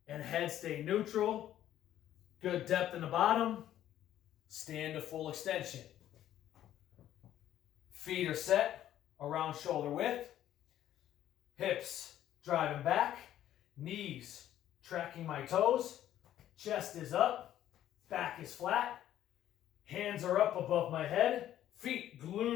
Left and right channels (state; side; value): quieter; right; 12.0 dB